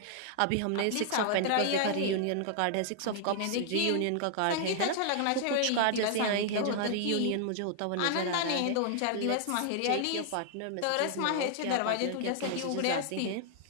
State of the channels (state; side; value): different; both; correlation 0.00